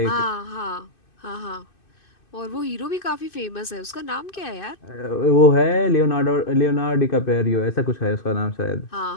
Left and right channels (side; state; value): right; late; 2.6 ms